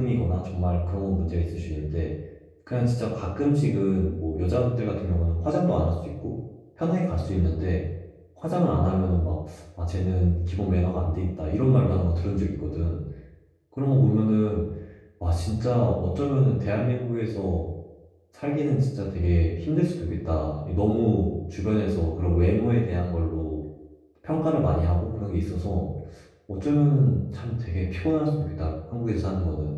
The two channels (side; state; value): both; identical; correlation 1.00